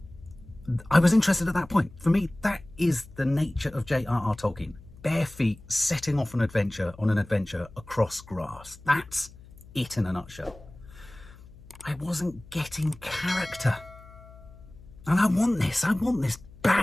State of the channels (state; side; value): noise; left; hum, 21 dB below the sound